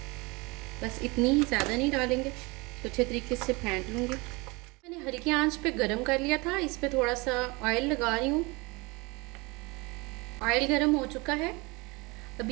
बस इतनी ही, ज़्यादा नहीं डालेंगे। तो अच्छे तरीके से फेंट लूँगी। मैंने हल्की आंच पे गरम कर लिया था। इस पे थोड़ा सा ऑयल लगा रही हूँ। ऑयल गरम हो चुका है।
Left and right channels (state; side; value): quieter; left; 25.7 dB